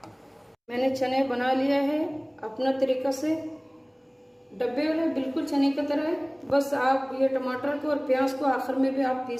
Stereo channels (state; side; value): identical; both; correlation 1.00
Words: मैंने चने बना लिया है अपना तरीका से, डब्बे वाले बिल्कुल चने की तरह है। बस आप ये टमाटर को और प्याज को आखिर में भी आप